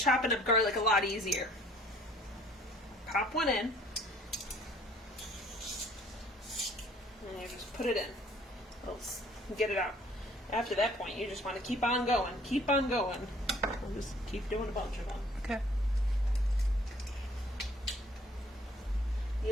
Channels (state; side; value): normal; both; correlation 0.57